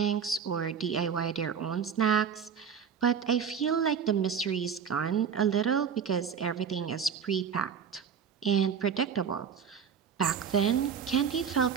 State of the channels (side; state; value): left; quieter; 7.0 dB